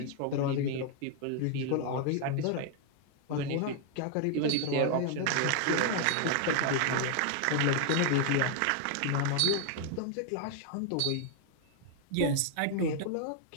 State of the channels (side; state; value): both; different; correlation 0.00